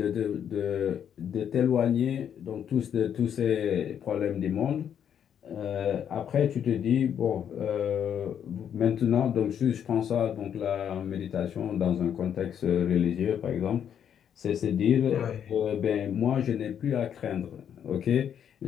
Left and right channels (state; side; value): quieter; right; 8.8 dB